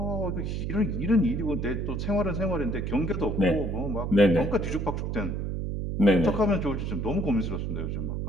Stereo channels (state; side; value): noise; right; hum, 2 dB below the sound